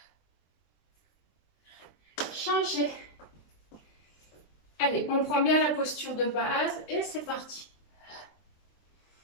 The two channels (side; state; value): right; late; 23 ms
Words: Changez. Allez, on prend bien la posture de base et c'est parti.